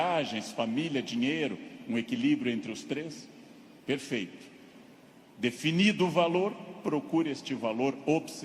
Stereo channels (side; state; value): both; identical; correlation 1.00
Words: família, dinheiro, um equilíbrio entre os três? Perfeito. Definido o valor, procure este valor